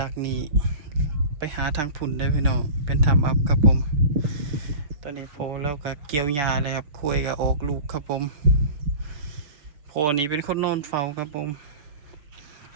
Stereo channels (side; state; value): left; late; 6.9 ms